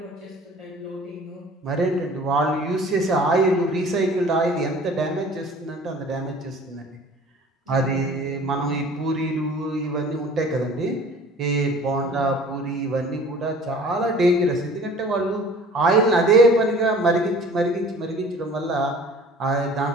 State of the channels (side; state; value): both; normal; correlation 0.47